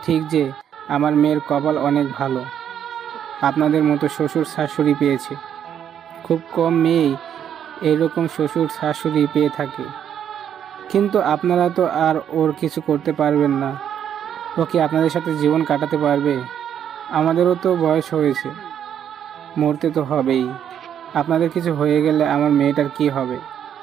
ঠিক যে আমার মেয়ের কপাল অনেক ভালো, আপনাদের মতো শ্বশুর শাশুড়ি পেয়েছে। খুব কম মেয়েই এরকম শ্বশুর শাশুড়ি পেয়ে থাকে। কিন্তু আপনারা তো আর ওর কিছু করতে পারবেন না। ও কি আপনাদের সাথে জীবন কাটাতে পারবে? আমাদেরও তো বয়স হয়েছে, মরতে তো হবেই। আপনাদের কিছু হয়ে গেলে আমার মেয়েটার কি হবে?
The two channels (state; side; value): quieter; left; 9.2 dB